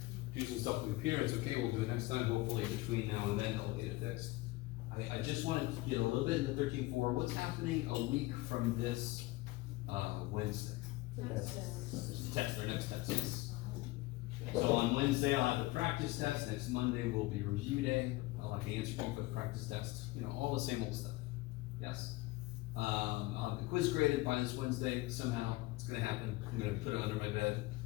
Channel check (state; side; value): quieter; right; 20.2 dB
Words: do some stuff with the computer. It's okay. We'll do it next time. Hopefully between now and then I'll get it fixed. I just wanted to get a little bit into 13.4. What's happening a week from this Wednesday? Test, their next test, yes. So on Wednesday, I'll have the practice test. Next Monday will be review day. I'll have the answer key for the practice test. You know, all the same old stuff. Yes? I'll have the quiz graded by this Wednesday. Somehow, it's gonna happen. I'm gonna put it under my bed,